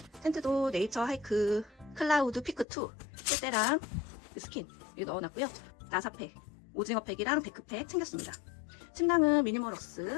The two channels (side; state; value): right; drops out; at 2.7 s